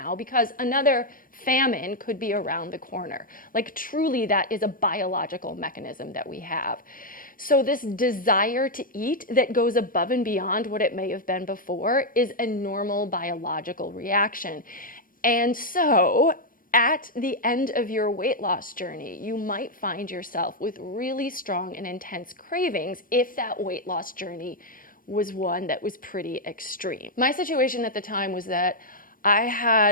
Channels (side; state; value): right; late; 0.40 ms